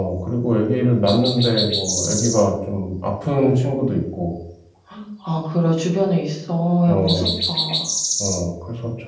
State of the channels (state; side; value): identical; both; correlation 1.00